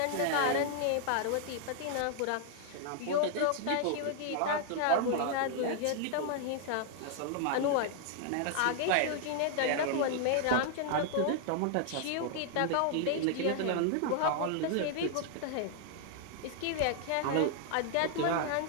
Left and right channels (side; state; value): both; different; correlation -0.01